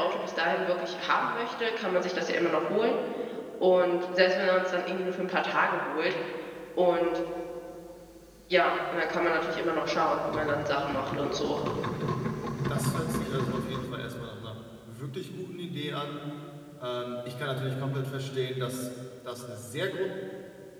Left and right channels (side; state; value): both; identical; correlation 1.00